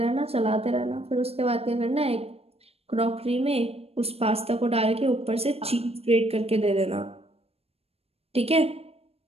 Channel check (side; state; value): left; late; 0.29 ms